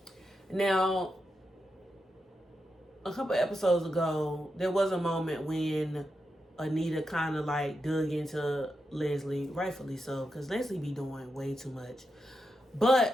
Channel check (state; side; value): normal; both; correlation 0.87